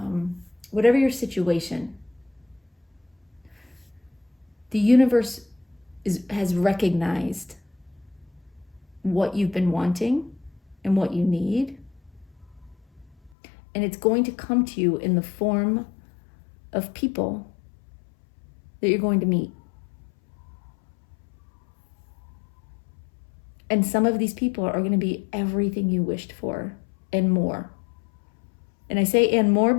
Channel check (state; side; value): drops out; right; at 13.3 s